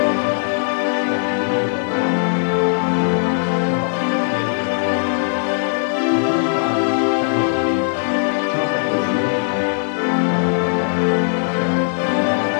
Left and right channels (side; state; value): right; silent; 67 dB below the other